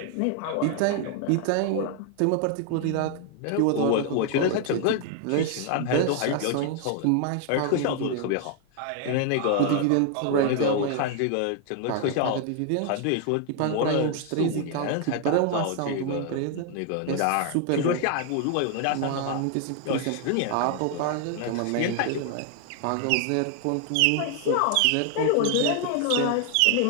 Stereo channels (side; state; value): both; different; correlation 0.00